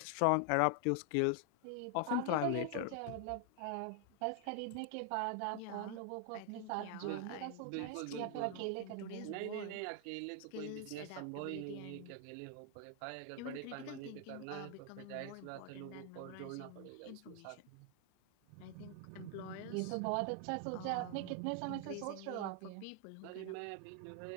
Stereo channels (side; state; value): both; different; correlation 0.00